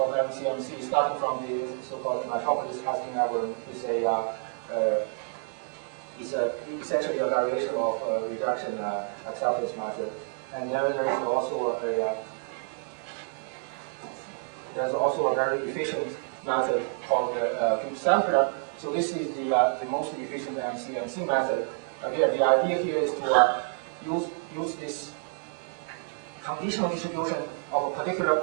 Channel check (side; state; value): left; silent; 59 dB below the other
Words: MCMC, starting from the so-called hypothesis testing algorithm with a is essentially a variation of reduction acceptance method. And there is also a very efficient method called the cube sampler. So this is the most efficient MC method. Again, the idea here is to use this conditional distribution of a